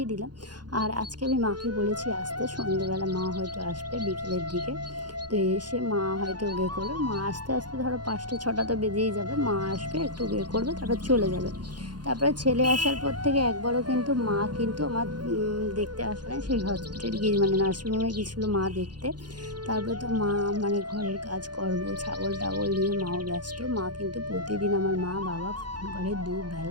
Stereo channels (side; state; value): left; late; 0.70 ms